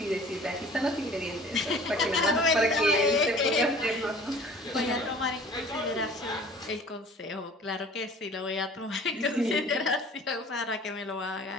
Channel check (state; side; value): normal; both; correlation 0.47